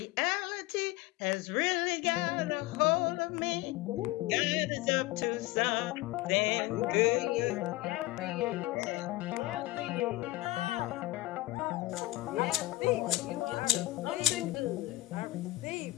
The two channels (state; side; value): quieter; right; 18.6 dB